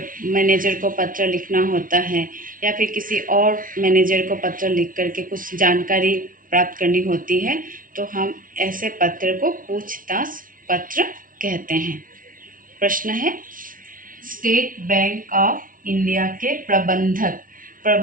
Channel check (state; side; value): late; left; 0.39 ms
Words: मैनेजर को पत्र लिखना होता है, या फिर किसी और मैनेजर को पत्र लिख करके कुछ जानकारी प्राप्त करनी होती है, तो हम ऐसे पत्र को पूछताछ पत्र कहते हैं। प्रश्न है, स्टेट बैंक ऑफ इंडिया के